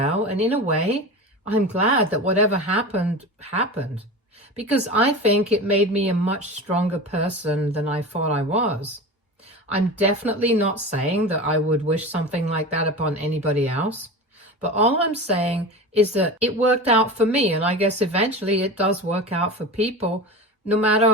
and in a way, I'm glad that whatever happened, happened, because I think it made me a much stronger person than I thought I was. I'm definitely not saying that I would wish something like that upon anybody else. But all I'm saying is that it worked out for me, and I guess eventually it does work out for people, no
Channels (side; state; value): both; normal; correlation 0.29